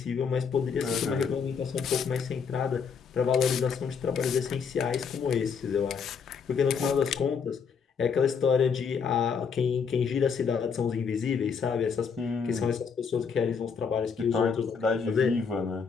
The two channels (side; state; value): right; quieter; 6.1 dB